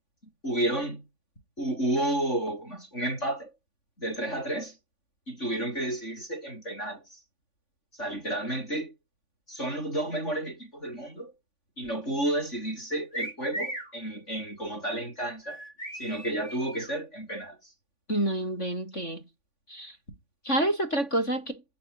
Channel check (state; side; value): late; right; 3.5 ms